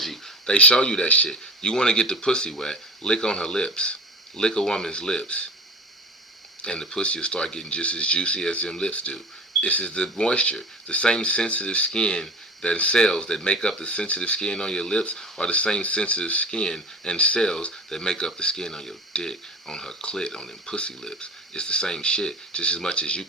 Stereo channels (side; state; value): both; normal; correlation 0.33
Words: they show you that shit. You want to get the pussy wet, lick on her lips. Lick a woman's lips. And the pussy will start getting just as juicy as them lips do. This is the moisture. The same sensitive skin that cells that make up the sensitive skin on your lips are the same sensitive skin and cells that make up the skin on your dick, on her clit, on them pussy lips. It's the same shit. Just as much as you